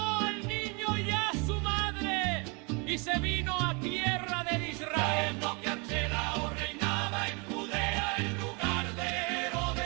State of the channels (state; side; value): quieter; left; 31.4 dB